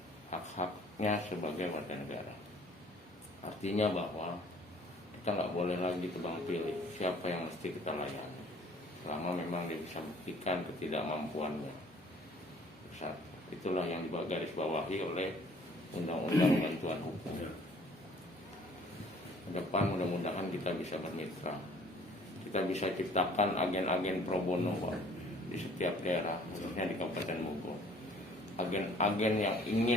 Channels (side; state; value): both; normal; correlation 0.54